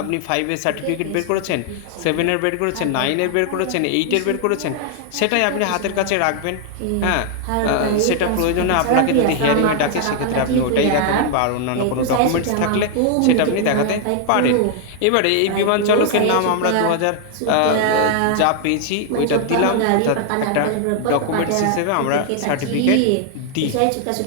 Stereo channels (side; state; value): both; different; correlation 0.00